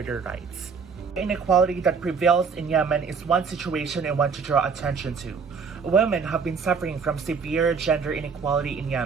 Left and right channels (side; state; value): left; quieter; 5.6 dB